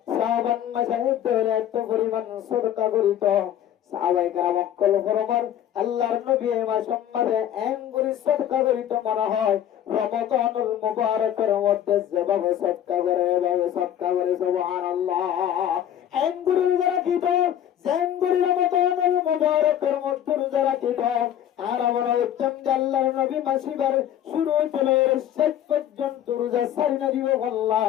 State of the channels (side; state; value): right; quieter; 10.7 dB